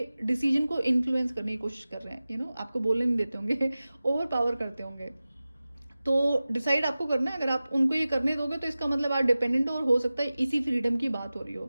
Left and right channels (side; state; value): both; inverted; correlation -0.96